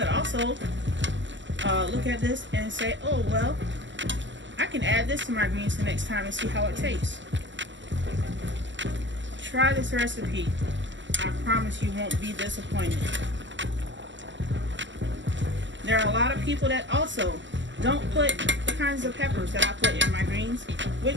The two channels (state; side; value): late; left; 0.54 ms